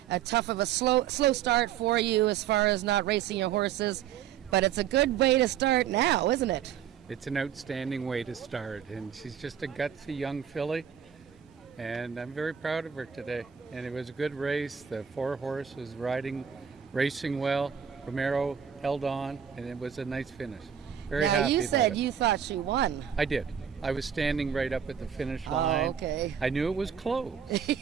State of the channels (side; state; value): left; quieter; 8.5 dB